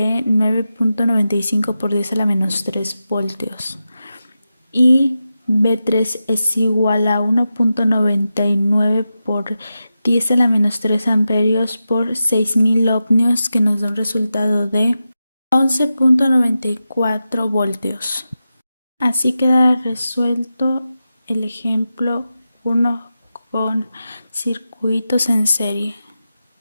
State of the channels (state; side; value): inverted; both; correlation -0.91